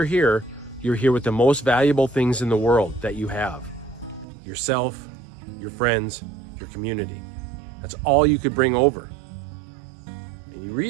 here with the most valuable things in the world that you have. Yourself, your friends, your community. That's all you could bring over. And you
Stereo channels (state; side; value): drops out; left; at 4.2 s